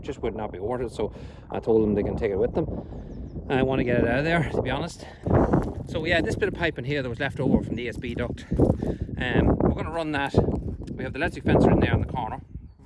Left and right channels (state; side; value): identical; both; correlation 1.00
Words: just would not be worth it, so I told them they can take it with them. I want to get it out of there, to be honest. So yeah, this bit of piping here that was left over from the ESB duct, we're going to run that. We have the electric fencer in there in the corner,